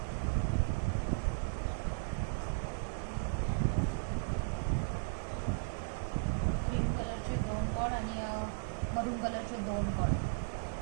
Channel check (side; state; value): left; silent; digital silence